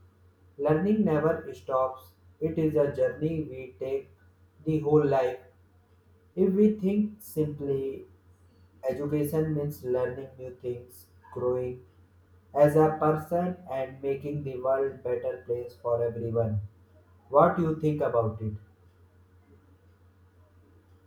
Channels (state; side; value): identical; both; correlation 1.00